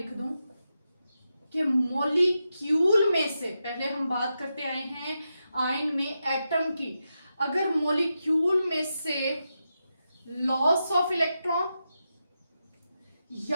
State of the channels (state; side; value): inverted; both; correlation -0.88